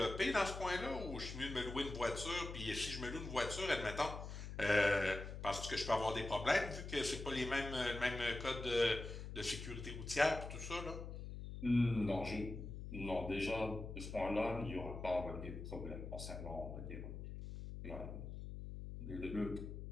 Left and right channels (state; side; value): noise; left; hum, 8 dB below the sound